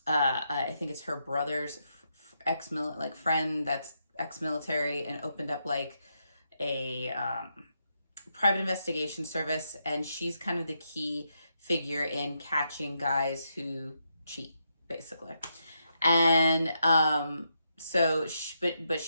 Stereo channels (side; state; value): both; inverted; correlation -0.82